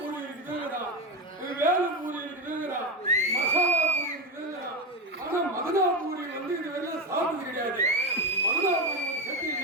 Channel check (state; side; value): normal; both; correlation 0.15